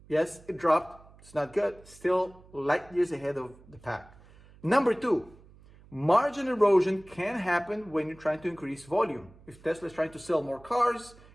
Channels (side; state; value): right; noise; hum, 24 dB below the sound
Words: Yes, it dropped. It's not good. Still light years ahead of the pack. Number two, margin erosion can happen when you're trying to increase volume. If Tesla is trying to sell more cars